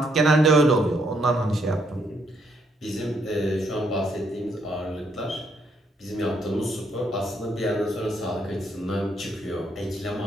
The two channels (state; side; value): normal; both; correlation 0.72